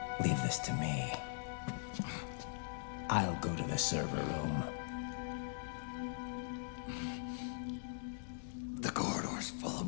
leave this to me. I'll go to the server room. The corridor's full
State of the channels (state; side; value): silent; right; digital silence